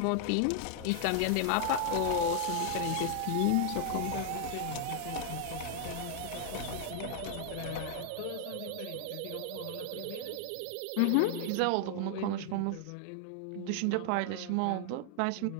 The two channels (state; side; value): different; both; correlation 0.00